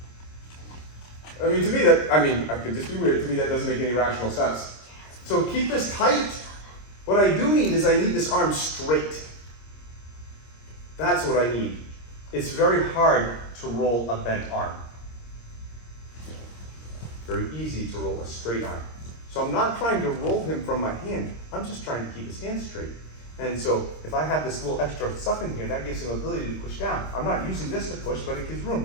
To me I could just be weird. To me, that doesn't make any rational sense. So keep this tight. What I do need is this arm straight. That's what I need. It's very hard to roll a bent arm. Very easy to roll a straight arm. So I'm not trying to roll him from my hand. I'm just trying to keep his hand straight. And so if I have this little extra stuff in here, that gives him ability to push down. I'm not using this to push, but it gives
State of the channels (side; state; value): right; late; 26 ms